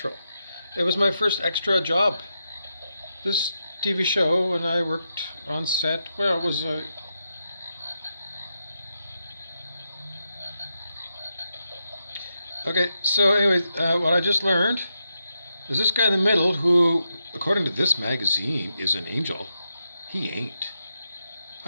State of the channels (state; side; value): inverted; both; correlation -0.86